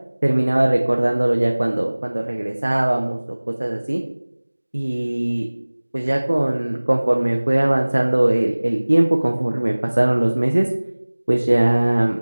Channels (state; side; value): inverted; both; correlation -1.00